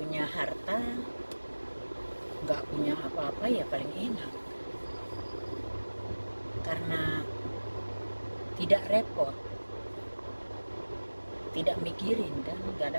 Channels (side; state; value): both; inverted; correlation -1.00